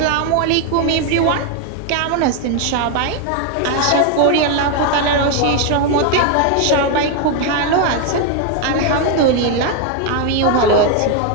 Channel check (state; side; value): different; both; correlation 0.01